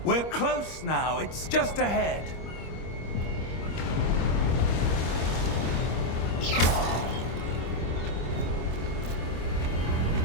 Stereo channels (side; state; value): right; late; 25 ms